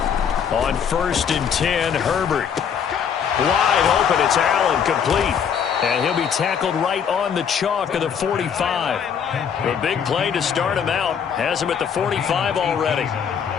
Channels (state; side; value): quieter; right; 7.5 dB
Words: On 1st and 10, Herbert. Wide open, it's Allen, complete. And he'll be tackled right on the chalk of the 45. A big play to start him out. Has him at the 45 already.